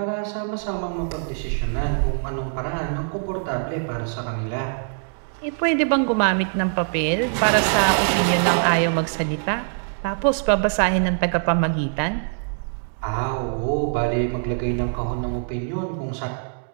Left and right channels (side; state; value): left; silent; digital silence